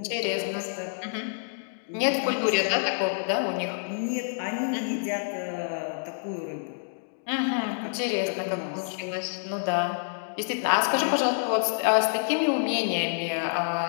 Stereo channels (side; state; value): right; silent; digital silence